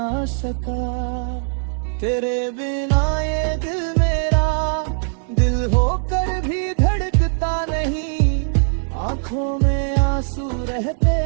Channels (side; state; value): left; silent; 61 dB below the other